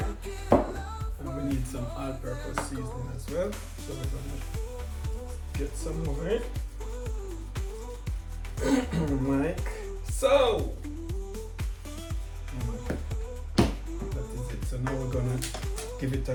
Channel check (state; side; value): identical; both; correlation 1.00